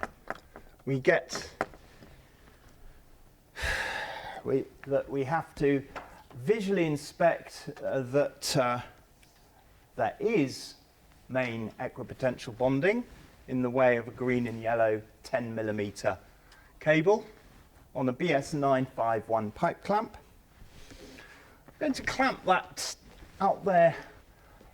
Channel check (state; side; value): identical; both; correlation 1.00